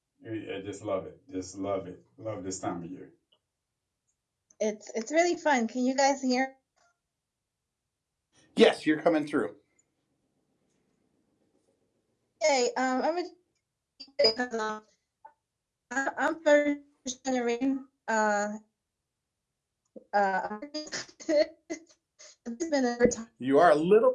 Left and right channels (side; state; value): both; identical; correlation 1.00